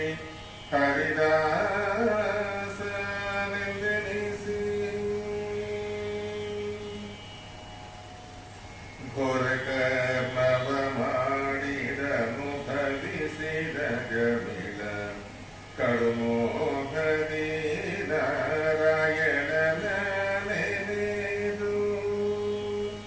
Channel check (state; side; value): identical; both; correlation 1.00